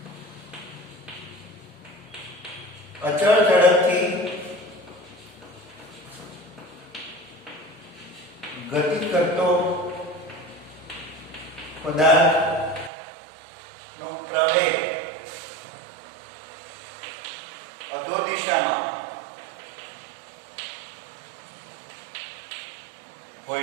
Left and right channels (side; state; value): left; drops out; at 12.9 s